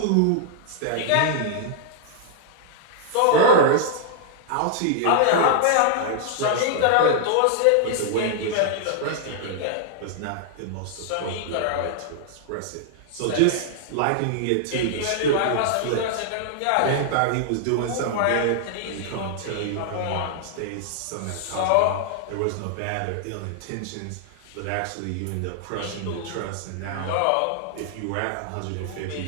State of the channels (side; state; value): both; different; correlation -0.01